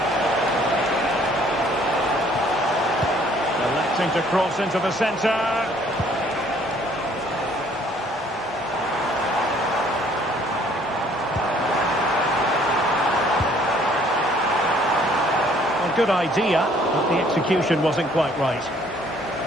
Electing to cross into the centre. Well, good idea, but the execution wasn't quite right.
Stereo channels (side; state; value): both; normal; correlation 0.60